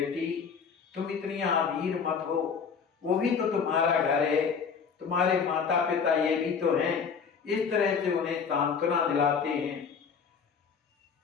तुम इतनी आधीर मत हो, वो भी तो तुम्हारा घर है, तुम्हारे माता पिता ये भी तो हैं। इस तरह से उन्हें सांत्वना दिलाते हैं।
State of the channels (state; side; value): quieter; right; 6.2 dB